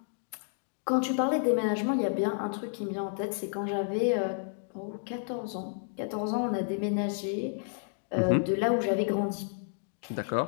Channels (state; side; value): silent; right; digital silence